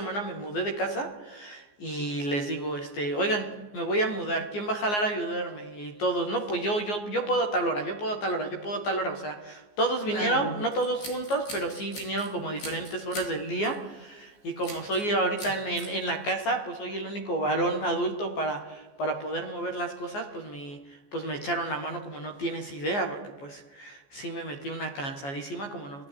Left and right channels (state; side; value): late; right; 14 ms